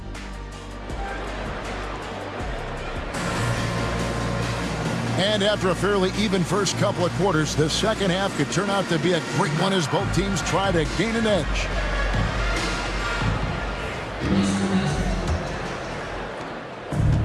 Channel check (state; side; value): identical; both; correlation 1.00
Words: And after a fairly even first couple of quarters, the second half could turn out to be a great one as both teams try to gain an edge.